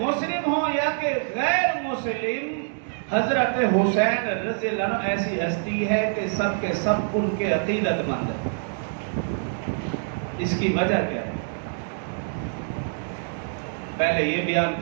مسلم ہوں یا کہ غیر مسلم، حضرت حسین رضی اللہ عنہ ایسی ہستی ہے کہ سب کے سب ان کے عقیدت مند ہیں۔ اس کی وجہ کیا ہے؟ پہلے یہ بیان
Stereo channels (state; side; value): silent; left; digital silence